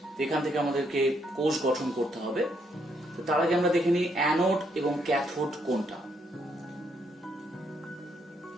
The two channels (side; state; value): both; normal; correlation 0.74